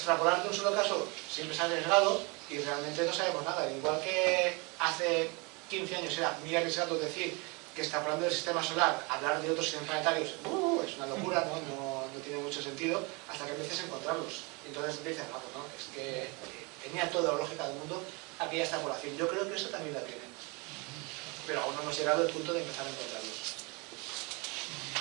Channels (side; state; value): left; quieter; 29.0 dB